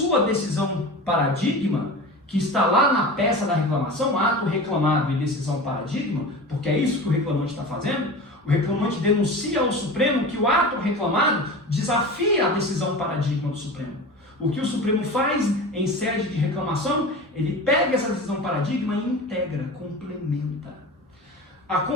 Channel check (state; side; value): normal; both; correlation 0.32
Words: decisão paradigma, que está lá na peça da reclamação, ato reclamado e decisão paradigma, porque é isso que o reclamante está fazendo, o reclamante denuncia ao Supremo que o ato reclamado desafia a decisão paradigma do Supremo. O que o Supremo faz em sede de reclamação, ele pega essa decisão paradigma e integra, complementa.